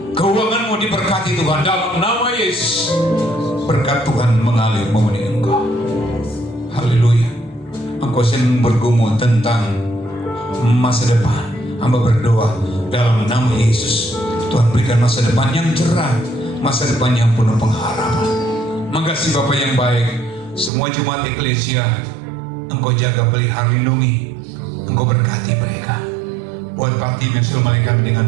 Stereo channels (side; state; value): left; drops out; at 20.7 s